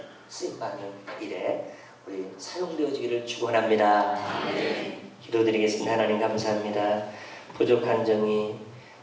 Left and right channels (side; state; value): both; identical; correlation 1.00